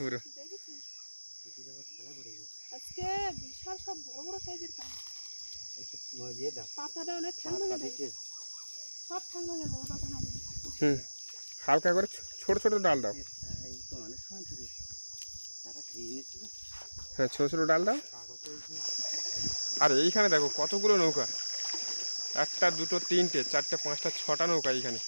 পুরো। দেখেছিস এটি যখন খেলা পড়ে গেছে আজকে বিশাল সব বড় বড় সাইজের কাঁকড়া। একটু দিয়ে দাও পাতাটা অনেক ঠান্ডা হয়ে যাবে, দিচ্ছে সব ঠান্ডা হয়ে যাবে পাতা না দিলে। হালকা করে ছোট ছোট ডাল দাও। এই তো অনেক সময় ধরে তারা খেয়ে নিয়েছিল হ্যাঁ, ছোট ছোট ডাল দাও। কাগজে আর এইখানে দেখো কতগুলো নৌকা, একটা দুটো তিনটে চারটে পাঁচটা ছটা নৌকা এইখানে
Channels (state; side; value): inverted; both; correlation -1.00